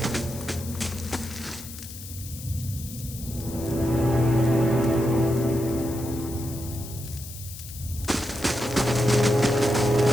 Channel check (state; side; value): noise; left; hiss, 13 dB below the sound